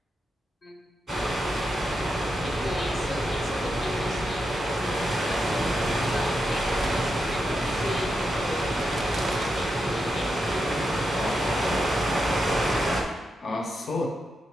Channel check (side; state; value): both; normal; correlation 0.86